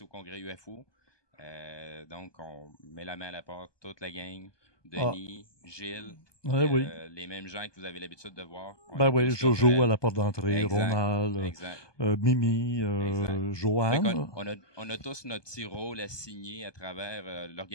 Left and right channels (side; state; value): right; late; 1.2 ms